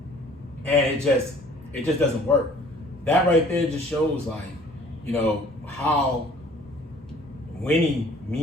and it just doesn't work. That right there just shows like, you know, how winning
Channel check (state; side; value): normal; both; correlation 0.54